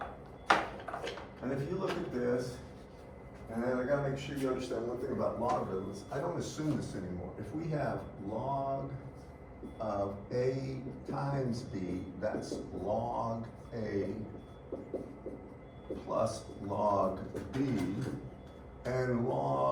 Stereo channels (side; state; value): both; identical; correlation 1.00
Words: And if you look at this, and I got to make sure you understand one thing about logarithms. I don't assume this anymore. If we have log of A times B, that's log A plus log B, and